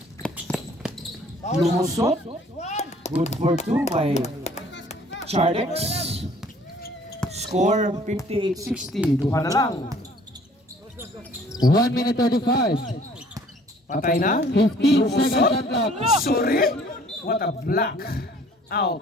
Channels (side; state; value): both; normal; correlation 0.56